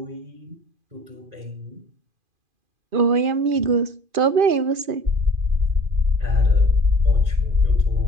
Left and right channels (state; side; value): late; left; 2.4 ms